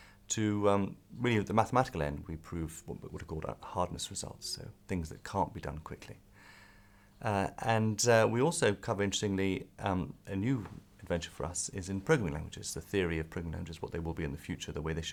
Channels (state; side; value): identical; both; correlation 1.00